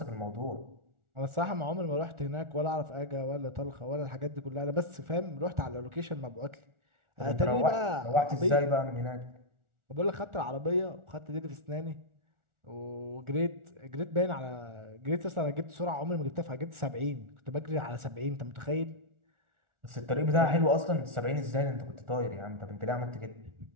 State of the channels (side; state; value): left; late; 1.4 ms